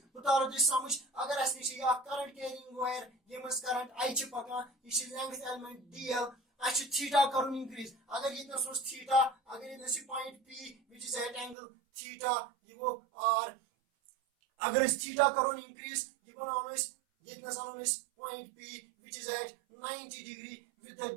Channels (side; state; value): left; drops out; at 11.6 s